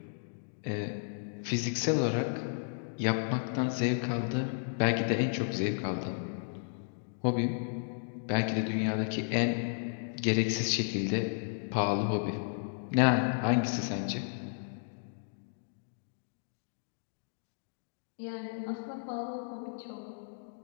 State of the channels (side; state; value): right; silent; digital silence